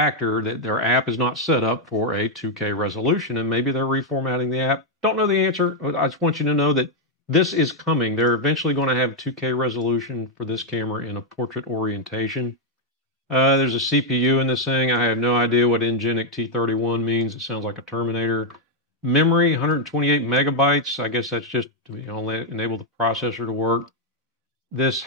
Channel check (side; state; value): both; normal; correlation 0.00